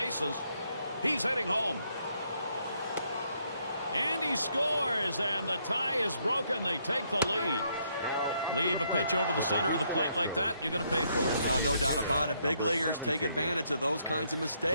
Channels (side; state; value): both; inverted; correlation -0.73